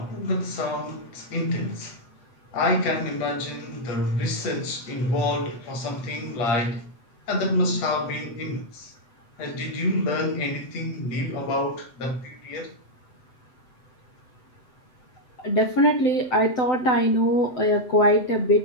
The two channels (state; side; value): late; right; 8.0 ms